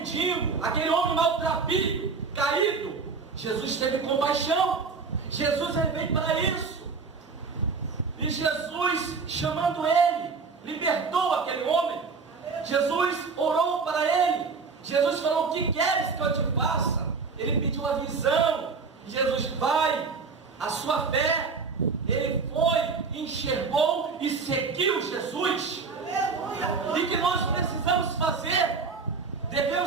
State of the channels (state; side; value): quieter; left; 4.8 dB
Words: aquele homem maltrapilho, caído. Jesus teve compaixão. Jesus, ele veio para isso. E Jesus, chamando ele, libertou aquele homem. Jesus orou para ele. Jesus falou: o que queres que eu te faça? Ele pediu a visão. Jesus: vai, a sua fé. Ele foi, enxergou e seguiu Jesus. E que nós precisamos fazer?